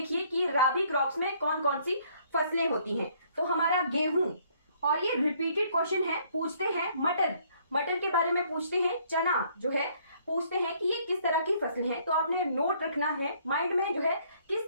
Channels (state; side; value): inverted; both; correlation -0.64